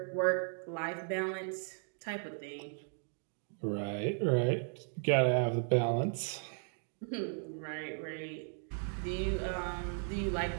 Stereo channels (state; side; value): silent; left; 54 dB below the other